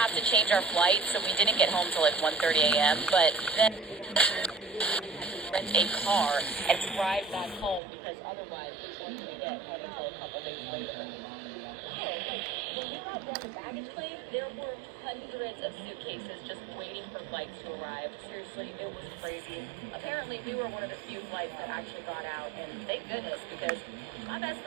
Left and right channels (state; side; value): drops out; left; at 7.8 s